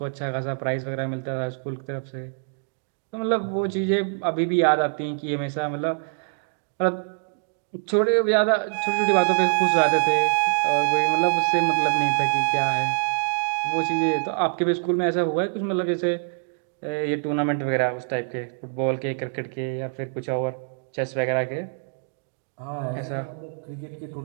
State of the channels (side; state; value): left; silent; 62 dB below the other